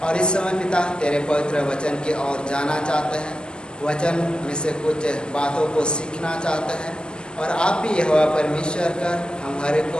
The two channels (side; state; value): right; late; 0.047 ms